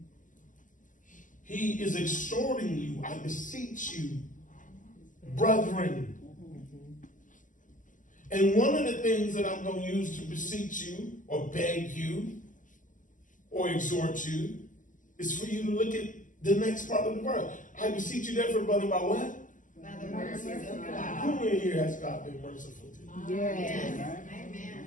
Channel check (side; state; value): right; late; 0.38 ms